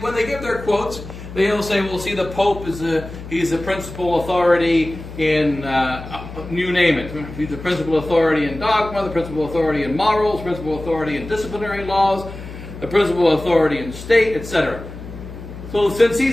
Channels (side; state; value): left; noise; hum, 12 dB below the sound